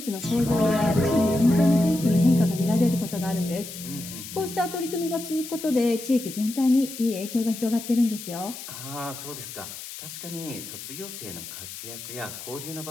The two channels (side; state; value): left; noise; hiss, 11 dB below the sound